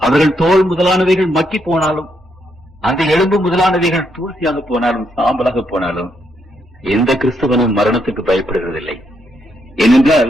அவர்கள் தோல் முதலானவைகள் மக்கி போனாலும், அந்த எலும்பு முதலானவைகள் தூசியாக போனாலும், சாம்பலாக போனாலும், எந்த கிறிஸ்தவனும் மரணத்துக்கு பயப்படுகிறதில்லை. ஏனென்றால்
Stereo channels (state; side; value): normal; both; correlation 0.77